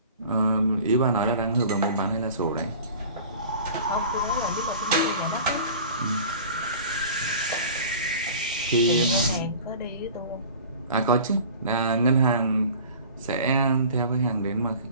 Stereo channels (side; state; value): both; inverted; correlation -0.42